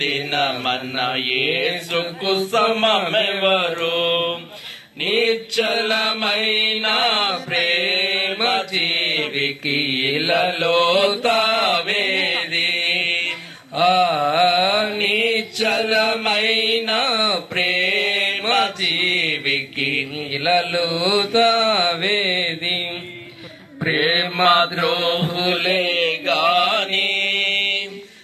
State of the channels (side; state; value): both; identical; correlation 1.00